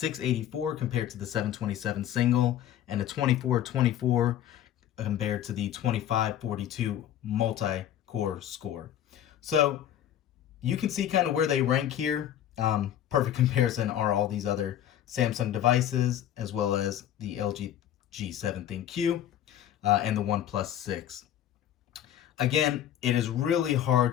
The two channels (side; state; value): right; quieter; 11.0 dB